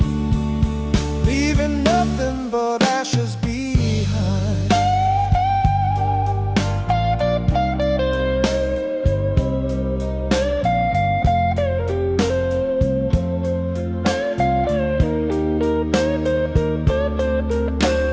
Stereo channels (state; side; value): identical; both; correlation 1.00